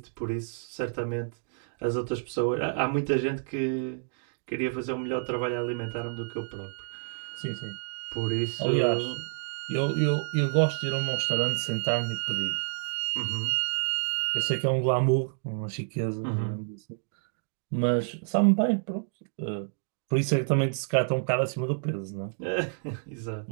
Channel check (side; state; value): left; silent; digital silence